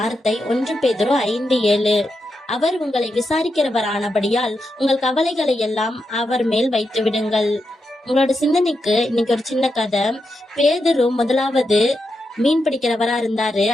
1 பேதுரு 5:7. அவர் உங்களை விசாரிக்கிறவரானபடியால் உங்கள் கவலைகளை எல்லாம் அவர் மேல் வைத்து விடுங்கள். உங்களோட சிந்தனைக்கு இன்னைக்கு ஒரு சின்ன கதை. பேதுரு முதலாவது மீன் பிடிக்கிறவரா இருந்தாரு.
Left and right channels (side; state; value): both; normal; correlation 0.86